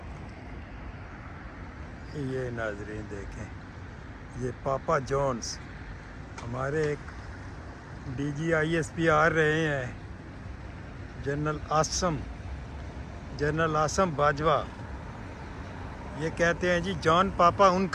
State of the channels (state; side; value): identical; both; correlation 1.00